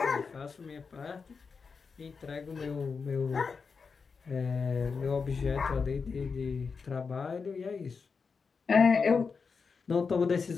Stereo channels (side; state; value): right; quieter; 5.2 dB